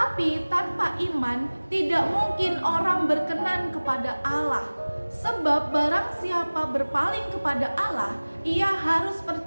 tanpa iman tidak mungkin orang berkenan kepada Allah. Sebab barang siapa berpaling kepada Allah, ia harus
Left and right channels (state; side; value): inverted; both; correlation -1.00